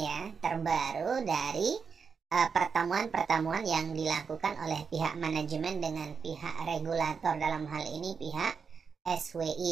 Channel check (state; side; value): quieter; left; 5.8 dB